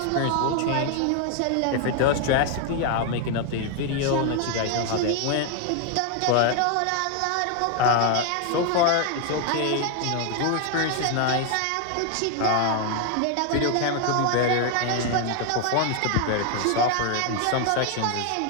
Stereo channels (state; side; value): different; both; correlation 0.01